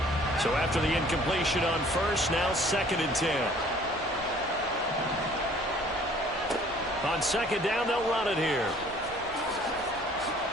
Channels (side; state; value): both; normal; correlation 0.55